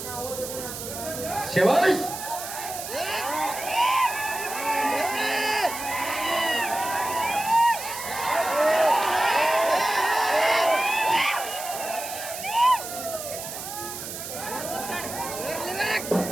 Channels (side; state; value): right; noise; hiss, 8 dB below the sound